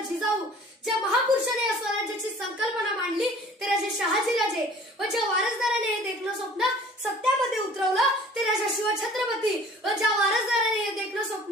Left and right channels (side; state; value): both; normal; correlation 0.49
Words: जिजाऊ, ज्या महापुरुषाने या स्वराज्याची संकल्पना मांडली ते राजे शहाजीराजे व ज्या वारसदाराने हे देखलं स्वप्न सत्यामध्ये उतरवलं ते राजा शिवछत्रपती व ज्या वारसदाराने हे देखलं